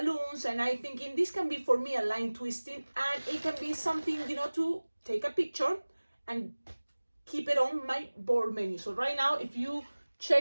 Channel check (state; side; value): inverted; both; correlation -1.00